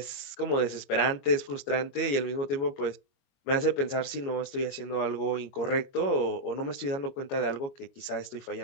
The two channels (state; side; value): late; right; 22 ms